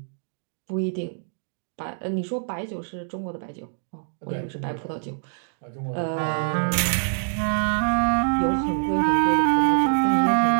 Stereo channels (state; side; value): silent; left; digital silence